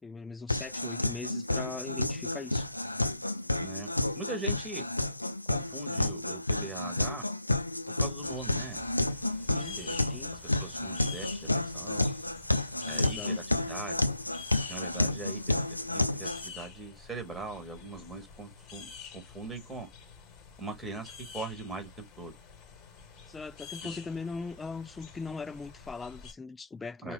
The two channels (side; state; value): both; inverted; correlation -0.73